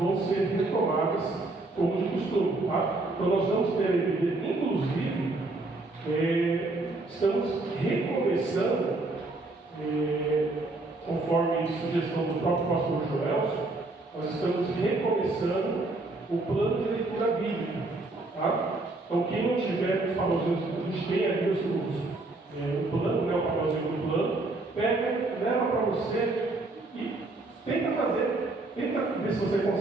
ser retomadas como de costume. Tá? Então nós vamos ter a igreja, inclusive, estamos recomeçando, conforme sugestão do próprio pastor Joelson, nós estamos recomeçando o plano de leitura bíblica. Tá? Então, quem não tiver os papelzinhos, a gente tem ali o plano, né, o papelzinho do plano, pega, leva para você e tenta ver se você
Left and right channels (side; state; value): left; quieter; 3.0 dB